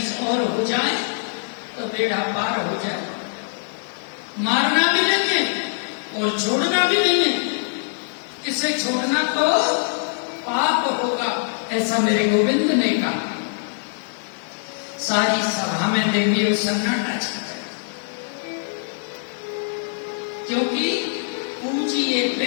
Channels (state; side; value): silent; right; digital silence